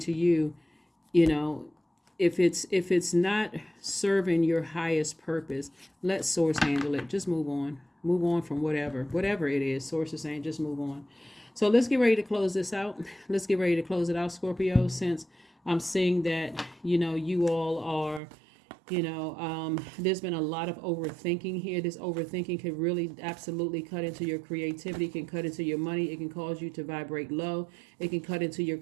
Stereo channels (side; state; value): left; drops out; at 18.2 s